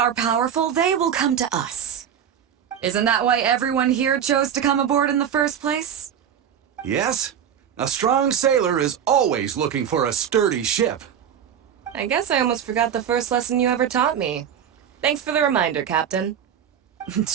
powerful, they will come to us. Isn't that why everyone here chose to come aboard in the first place? Yes? A strong sailor is always looking for a sturdy ship. I guess I almost forgot the first lesson you ever taught me. Thanks for the reminder, Captain.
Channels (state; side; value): quieter; left; 8.8 dB